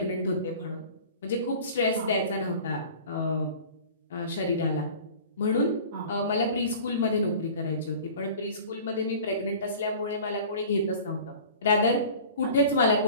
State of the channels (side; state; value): both; inverted; correlation -0.42